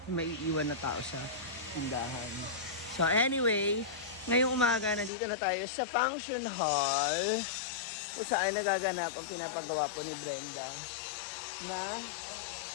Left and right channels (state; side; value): drops out; right; at 5.1 s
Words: May iiwan na tao sa tindahan. So anyway, ngayong umaga nandito na tayo sa function hall kung saan nagaganap ang pinapagawa po ni Brenda na